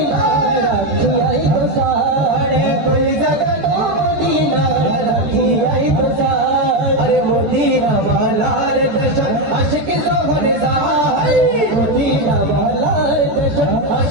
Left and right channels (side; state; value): left; late; 14 ms